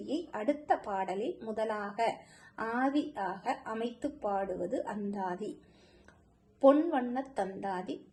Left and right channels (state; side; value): identical; both; correlation 1.00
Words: அடுத்த பாடலில் முதலாக ஆதியாக அமைத்து பாடுவது அந்தாதி. பொன்வண்ணத் தந்தாதி,